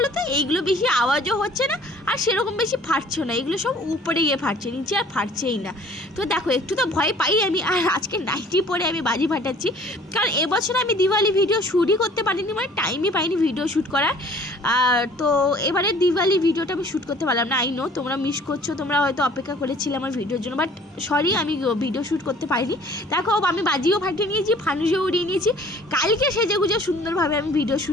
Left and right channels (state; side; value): normal; both; correlation 0.52